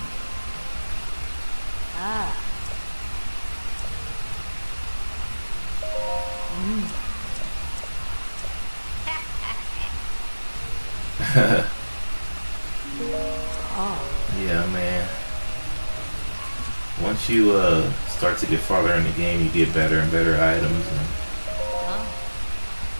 Yeah, man. Once you start to get farther in the game, you get better and better items. And,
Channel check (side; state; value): both; inverted; correlation -1.00